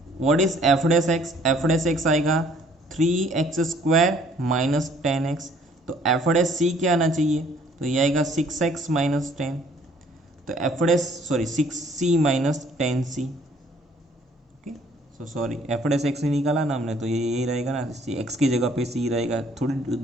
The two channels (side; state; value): both; normal; correlation 0.59